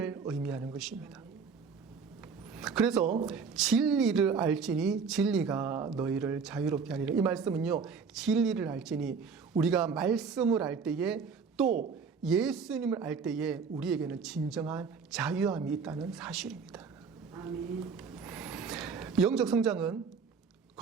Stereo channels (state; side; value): quieter; left; 5.6 dB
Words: 의미하는 것입니다. 그래서 진리를 알지니 진리가 너희를 자유롭게 하리라. 이 말씀은요, 진리를 알지니 우리가 말씀을 알 때에 또 예수님을 알 때에 우리에게는 진정한 자유함이 있다는 사실입니다. 아멘. 영적 성장은